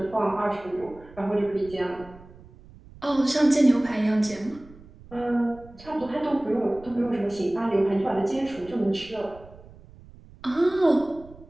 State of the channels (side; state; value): right; noise; rumble, 21 dB below the sound